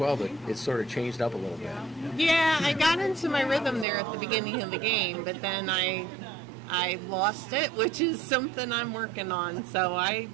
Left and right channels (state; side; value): drops out; left; at 3.9 s